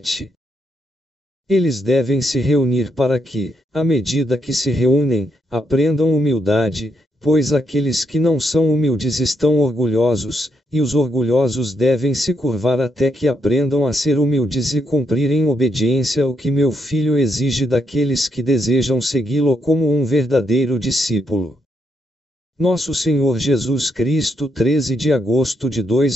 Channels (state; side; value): normal; both; correlation 0.79